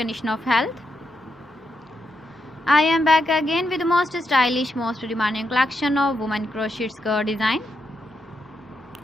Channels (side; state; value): both; normal; correlation 0.83